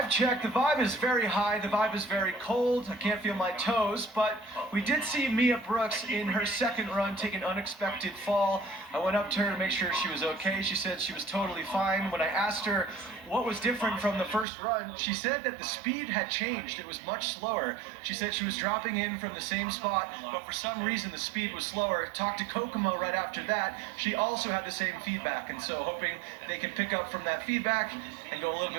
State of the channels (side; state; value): left; drops out; at 14.5 s